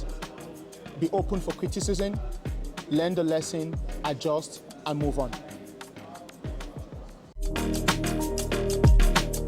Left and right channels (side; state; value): both; identical; correlation 1.00